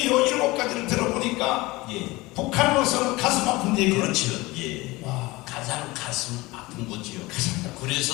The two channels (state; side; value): quieter; right; 21.3 dB